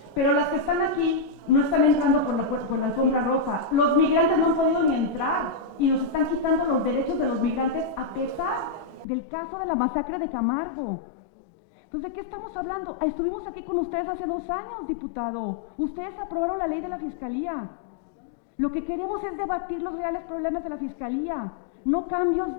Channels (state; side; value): drops out; right; at 9.1 s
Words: Pero las que están aquí no están entrando por la alfombra roja. Los migrantes no han podido ni entrar y nos están quitando los derechos de los migrantes a pesar del caso de la masacre de Camargo. Entonces, ¿de qué estamos hablando? Estuvimos aquí con ustedes hace 2 años, diputado. Ustedes aprobaron la ley de la Fiscalía. Lo que queremos es debatir los reales problemas de la Fiscalía, no